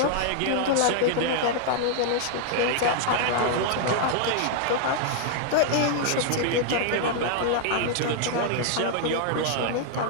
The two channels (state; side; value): different; both; correlation 0.00